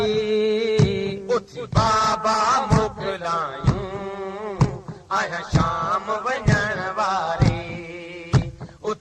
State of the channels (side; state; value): both; identical; correlation 1.00